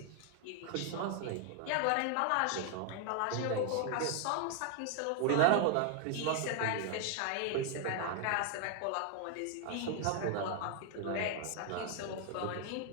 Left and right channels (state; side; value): different; both; correlation 0.00